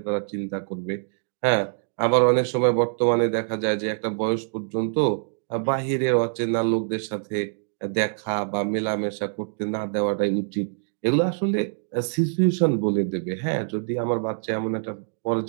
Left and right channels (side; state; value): left; silent; 62 dB below the other